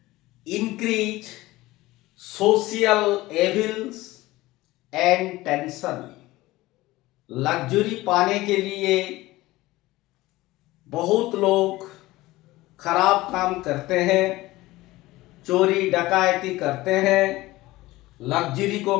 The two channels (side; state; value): right; quieter; 18.6 dB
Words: increase social evils and tension. Luxury पाने के लिए बहुत लोग खराब काम करते हैं, चोरी डकैती करते हैं लग्जरी को